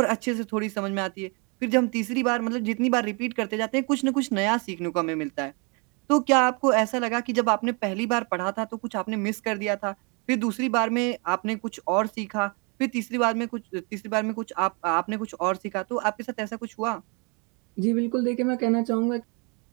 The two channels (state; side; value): quieter; left; 32.8 dB